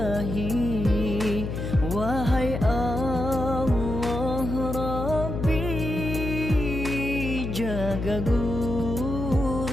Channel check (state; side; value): noise; left; hum, 4 dB below the sound